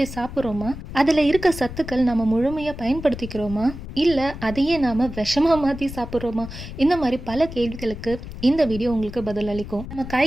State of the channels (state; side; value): noise; left; rumble, 11 dB below the sound